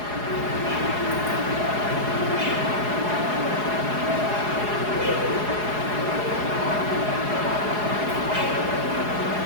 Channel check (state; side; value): late; left; 4.8 ms